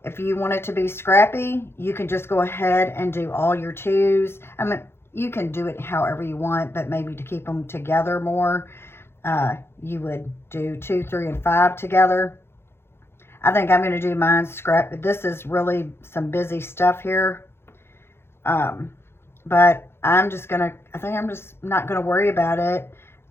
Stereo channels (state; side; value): late; right; 0.12 ms